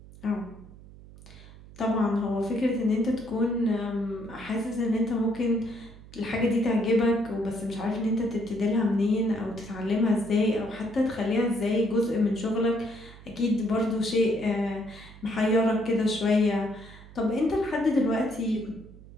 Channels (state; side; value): noise; right; hum, 19 dB below the sound